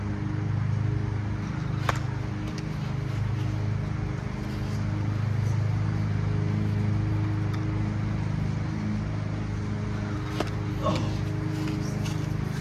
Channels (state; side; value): identical; both; correlation 1.00